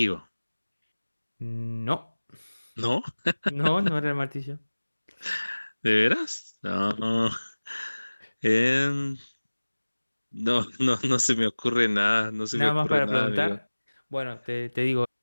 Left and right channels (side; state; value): both; inverted; correlation -1.00